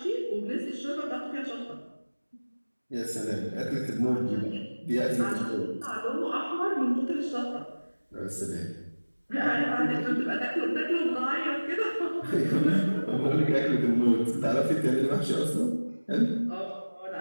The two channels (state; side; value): inverted; both; correlation -1.00